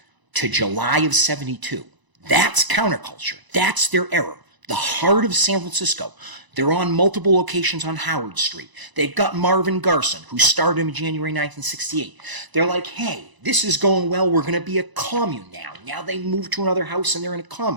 to July of 72. That's counterculture. That's their era. The heart of San Francisco. They're on multiple locations on Howard Street. They've got Marvin Garson, who started in January 1968. They're like, hey, this is going well. We're going to be a commune now. Now they move to another house and they're in a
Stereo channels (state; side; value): late; left; 1.0 ms